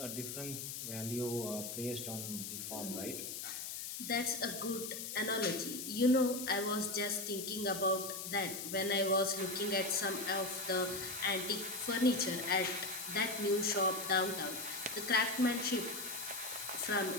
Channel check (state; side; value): noise; left; hiss, 6 dB below the sound